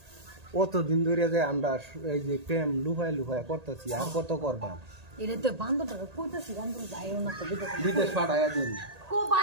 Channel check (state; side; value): late; left; 1.8 ms